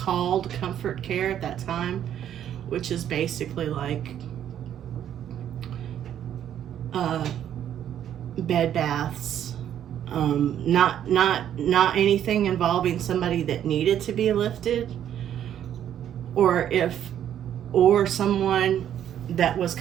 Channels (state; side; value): quieter; left; 10.2 dB